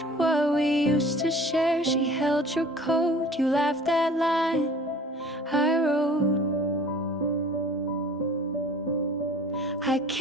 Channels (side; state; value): both; normal; correlation 0.46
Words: what we used to share. She held your coat, you laughed that line I wrote. I